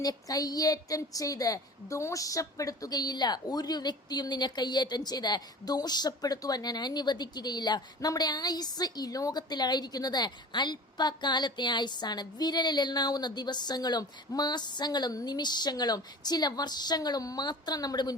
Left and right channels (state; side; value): normal; both; correlation 0.39